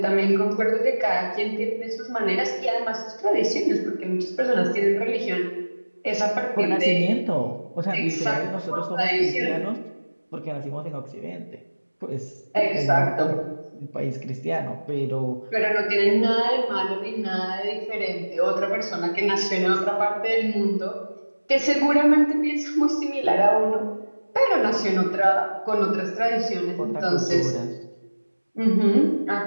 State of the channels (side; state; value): both; inverted; correlation -1.00